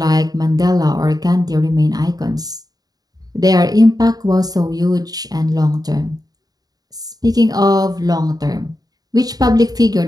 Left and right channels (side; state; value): left; late; 0.18 ms